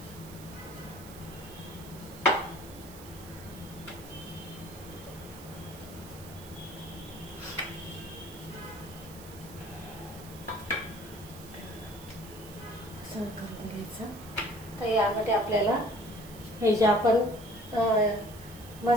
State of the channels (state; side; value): noise; right; hiss, 17 dB below the sound